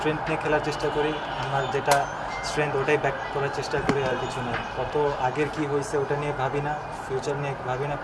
নিয়ে খেলার চেষ্টা করি। আমার যেটা স্ট্রেংথ ওটাই ব্যাক করার চেষ্টা করি, আর কিছু না। কত আগের কি হয়েছে ওটা নিয়ে ভাবি না, ফিউচার নিয়ে ভাবি না,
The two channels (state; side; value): identical; both; correlation 1.00